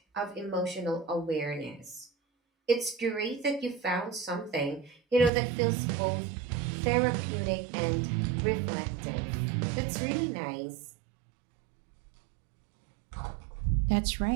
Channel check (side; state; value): left; drops out; at 5.3 s